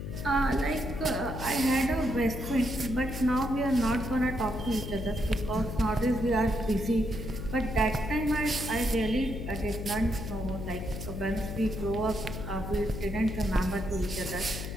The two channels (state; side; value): noise; left; hum, 7 dB below the sound